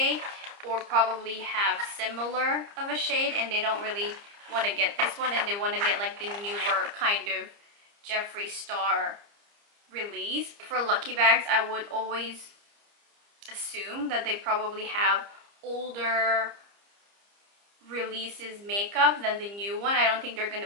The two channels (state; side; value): late; left; 30 ms